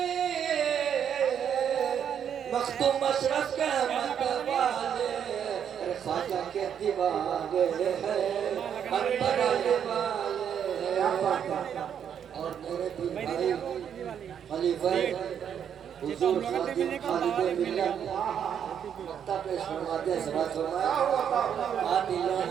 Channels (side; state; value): left; quieter; 8.5 dB